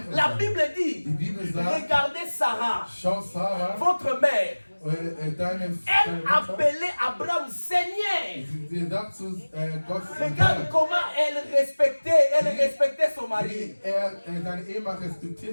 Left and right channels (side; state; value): both; inverted; correlation -1.00